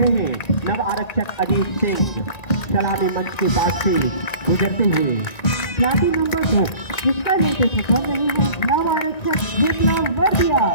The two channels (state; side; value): late; right; 1.9 ms